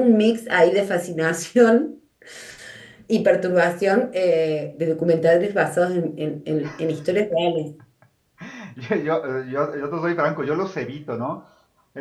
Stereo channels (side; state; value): both; identical; correlation 1.00